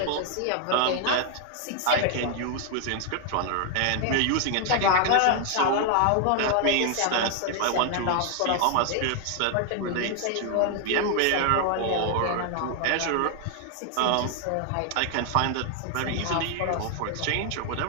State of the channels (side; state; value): both; different; correlation 0.00